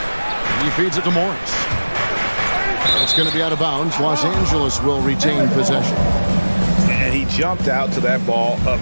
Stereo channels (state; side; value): inverted; both; correlation -1.00